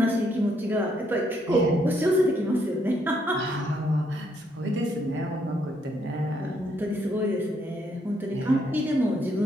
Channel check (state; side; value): normal; both; correlation 0.73